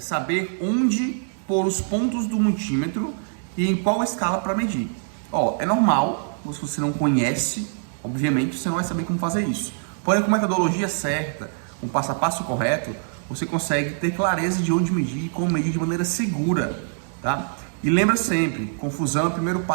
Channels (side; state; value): left; silent; digital silence